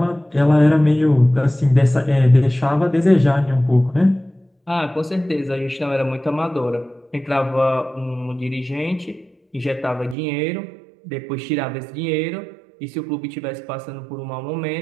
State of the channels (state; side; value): drops out; left; at 10.2 s